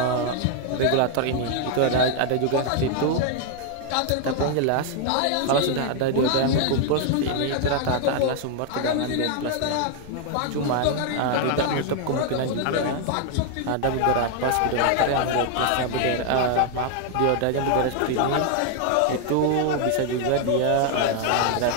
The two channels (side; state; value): both; different; correlation 0.00